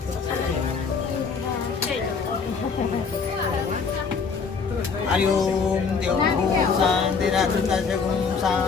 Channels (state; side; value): quieter; right; 5.3 dB